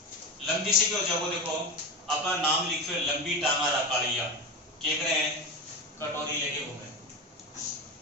लंबी से क्या हो जाएगा? देखो अपना नाम लिखो लंबी टांगा रकालिया, क्या कर रहे हैं? कटोरी लेके घूमे,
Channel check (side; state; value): both; normal; correlation 0.20